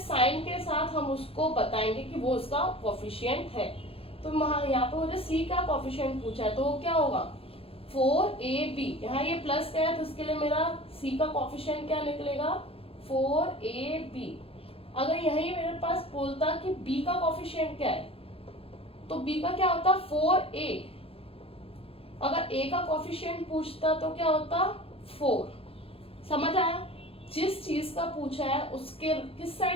के साथ हम उसको बताएंगे कि वो उसका कोएफिशिएंट है। तो यहाँ पे मुझे c का कोएफिशिएंट पूछा है, तो वो क्या होगा 4ab, यहाँ ये प्लस का है तो इसके लिए मेरा c का कोएफिशिएंट क्या निकलेगा 4ab। अगर यही मेरे पास बोलता कि b का कोफिशिएंट क्या है, तो b का क्या होता 4a। अगर a का कोफिशिएंट पूछता तो क्या होता 4। समझ आया? जिस चीज का पूछा है उसके किस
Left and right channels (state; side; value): late; right; 0.27 ms